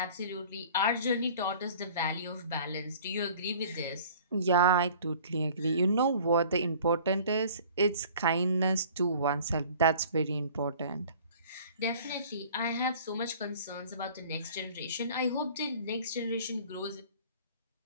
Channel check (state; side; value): inverted; both; correlation -0.48